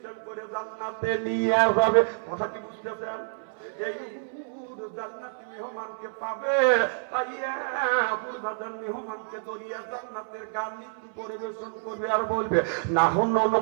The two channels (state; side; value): silent; left; 59 dB below the other